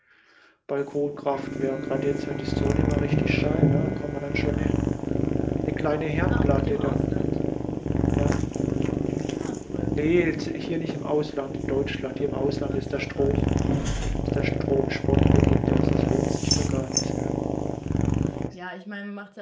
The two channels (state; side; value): identical; both; correlation 1.00